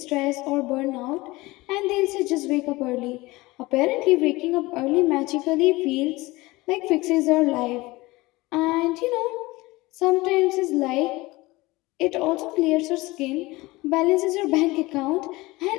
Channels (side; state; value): right; quieter; 21.1 dB